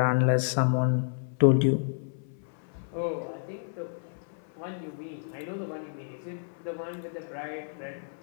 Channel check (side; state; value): right; silent; 58 dB below the other